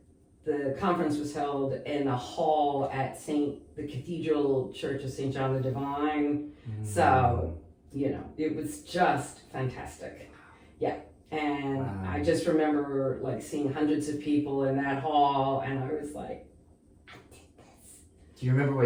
the conference was held in a hall at the Cathedral Church of St. John the Divine. So, it was just fantastic. Yeah. And I just remember like seeing hundreds of people in that hall, and I was like, I did this. Do you remember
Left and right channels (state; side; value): identical; both; correlation 1.00